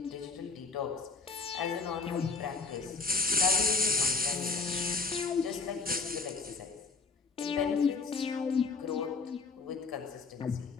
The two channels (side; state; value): right; quieter; 4.4 dB